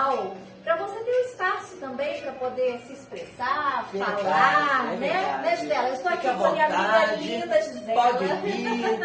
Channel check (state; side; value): identical; both; correlation 1.00